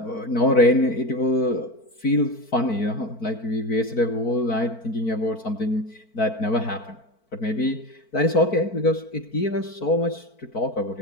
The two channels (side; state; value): right; late; 4.5 ms